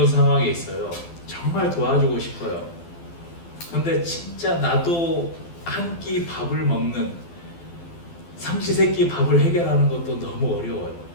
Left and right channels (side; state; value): right; late; 12 ms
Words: 상황에 있어요. 정말 도와주고 싶어요. 근데 진짜 나도 한 끼 밥을 먹는, 삼시세끼 밥을 해결하는 것도 너무 어려워요.